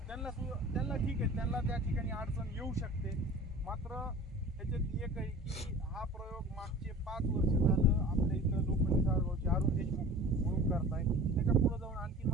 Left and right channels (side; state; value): both; normal; correlation 0.40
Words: त्यांना ठीक आहे, त्यांना त्या ठिकाणी अडचण येऊ शकते. मात्र त्याच्यात एक आहे की हा प्रयोग मागचे 5 वर्ष झालं आपल्या इथं लोखंडी सारगावचे अरुण देशमुख म्हणून करताय. त्याच्या पुढे जाऊन आणखी